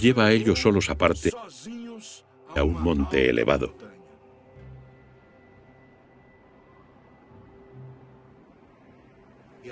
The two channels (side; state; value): both; identical; correlation 1.00